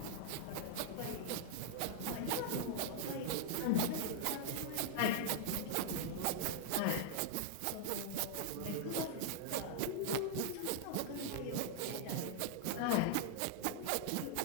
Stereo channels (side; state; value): both; different; correlation -0.01